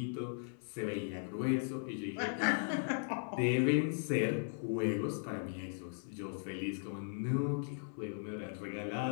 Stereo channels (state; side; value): silent; right; 53 dB below the other